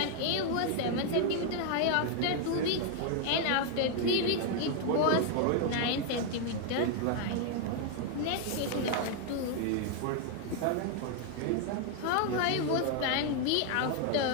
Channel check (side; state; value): both; different; correlation 0.00